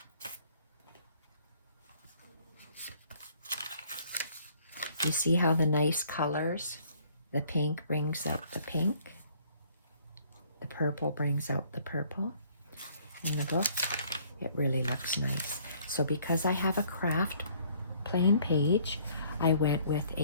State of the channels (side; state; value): both; inverted; correlation -0.60